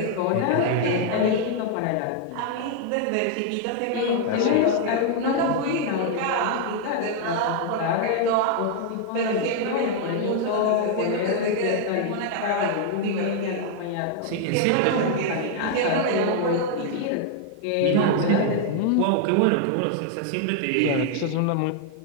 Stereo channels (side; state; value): both; different; correlation 0.00